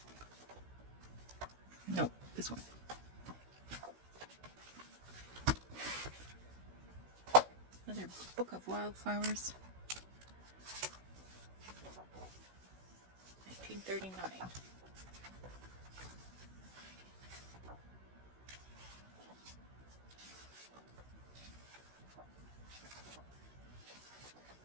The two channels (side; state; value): left; late; 16 ms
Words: No, this one. Another book of wildflowers. $39.